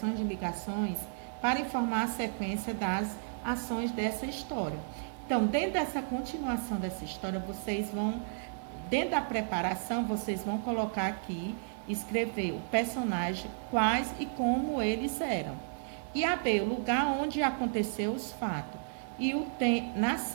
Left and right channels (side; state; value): left; silent; 56 dB below the other